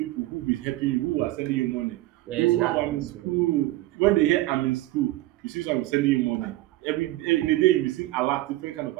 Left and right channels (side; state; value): left; quieter; 17.4 dB